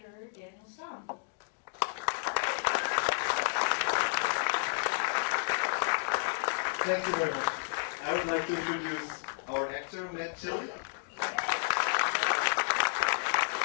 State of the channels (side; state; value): right; silent; digital silence